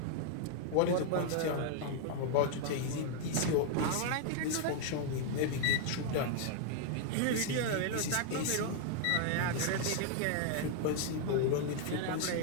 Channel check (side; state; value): both; different; correlation 0.00